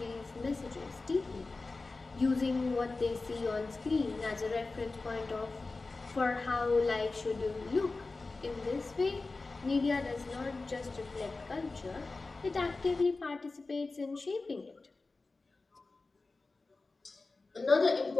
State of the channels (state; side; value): quieter; right; 3.6 dB